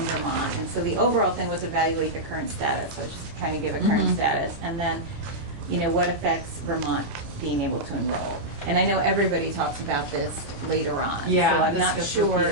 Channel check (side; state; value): left; late; 30 ms